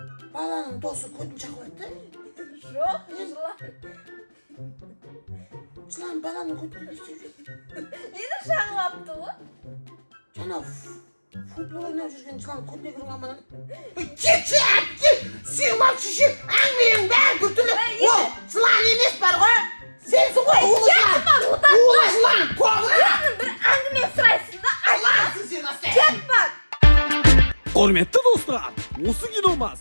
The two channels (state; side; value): inverted; both; correlation -1.00